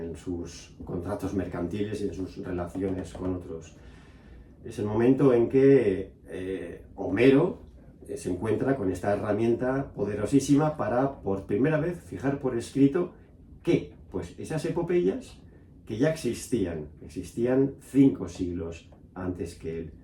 sus contratos mercantiles y en sus relaciones con otros. Es el momento en que Homero se encuentra con esta herramienta poderosísima para, por primera vez, fijar por escrito que, pues, esas epopeyas que ya existían 5 siglos antes que él.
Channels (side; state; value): both; identical; correlation 1.00